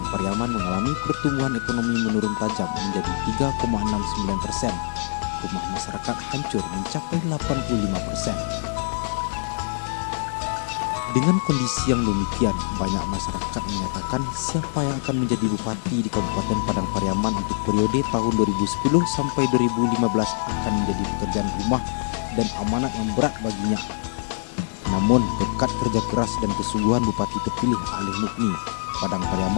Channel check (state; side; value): silent; right; 62 dB below the other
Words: Pariaman mengalami pertumbuhan ekonomi menurun tajam menjadi 3,69%. Rumah masyarakat hancur mencapai 85%. Dengan kondisi yang demikian, banyak masyarakat menyatakan siapa yang akan menjadi bupati di Kabupaten Padang Pariaman untuk periode tahun 2010 sampai 2015 akan menjadi pekerjaan rumah dan amanat yang berat baginya. Namun, berkat kerja keras dan kesungguhan Bupati terpilih Alih Mukni, Padang